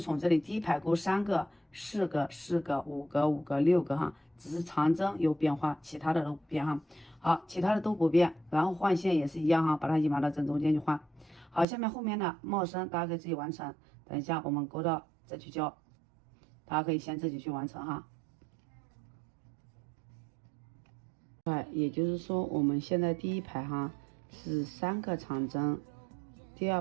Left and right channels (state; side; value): drops out; left; at 11.7 s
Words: 这里第一排勾3个、4个、4个、5个、5个、6个哈，只是长针有变化，其他的都不变哈。好，其他的都不变，然后换线也是一样哈，把它引拔到正中间去换。好，下面后面的帽身大家可以自己完成，等一下我们勾到再去教，大家可以先自己去完成哈。也就是说我们现在第一排哈是3个长针，第2